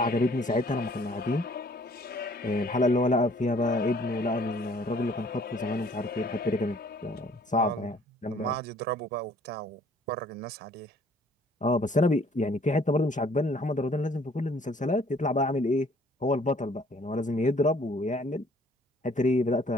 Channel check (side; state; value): both; normal; correlation 0.58